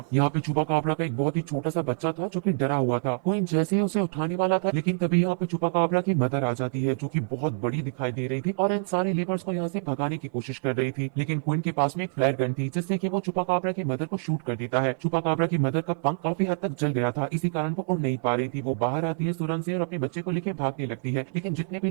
यहाँ पे चुपा काबरा का एक बहुत ही छोटा सा बच्चा था जो कि डरा हुआ था। क्विन जैसे ही उसे उठाने वाला था, लेकिन तभी यहाँ पे चुपा काबरा की मदर आ जाती है जो कि बहुत बड़ी दिखाई दे रही थी और इन सारे लेबर्स को यहाँ से भगाने की कोशिश कर रही थी। लेकिन क्विन के पास में एक फ्लायर गन थी जिससे कि वो चुपा काबरा की मदर को शूट कर देता है। चुपा काबरा की मदर का पंख काफी हद तक जल गया था, इसी कारण वो उड़ नहीं पा रही थी। वो बाहर आती है सुरंग से और अपने बच्चे को लेकर भागने लगती है, लेकिन जितने भी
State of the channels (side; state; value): left; silent; 60 dB below the other